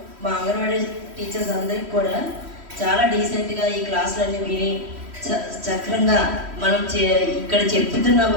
మా అంగన్వాడీ టీచర్స్ అందరికీ కూడా చాలా డీసెంట్గా ఈ క్లాసులన్నీ విని చక్రంగా మనం ఇక్కడ చెప్తున్న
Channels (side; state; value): left; late; 3.1 ms